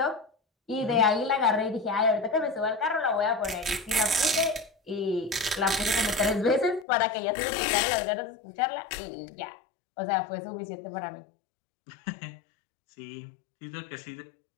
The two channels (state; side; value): drops out; right; at 6.9 s